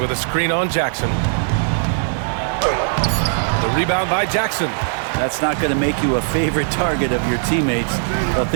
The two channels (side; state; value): left; silent; digital silence